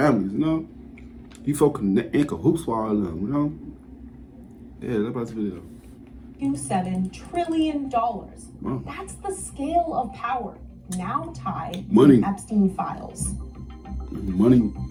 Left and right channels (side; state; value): both; identical; correlation 1.00